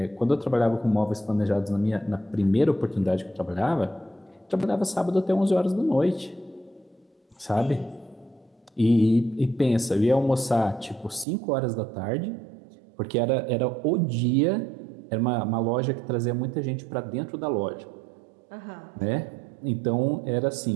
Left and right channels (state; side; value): drops out; left; at 11.2 s